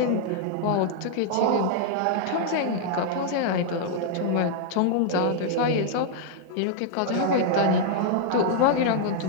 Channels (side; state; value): both; different; correlation -0.01